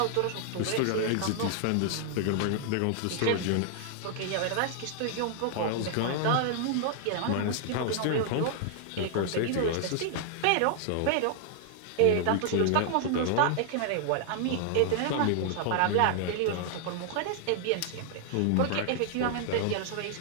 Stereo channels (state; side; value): different; both; correlation 0.00